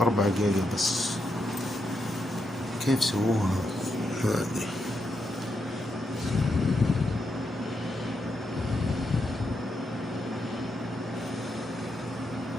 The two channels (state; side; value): normal; both; correlation 0.82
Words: جيجا بس. كيف سووها هذه؟